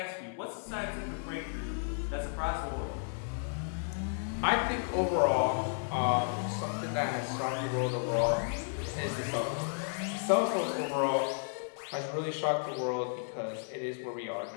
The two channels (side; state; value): right; silent; 56 dB below the other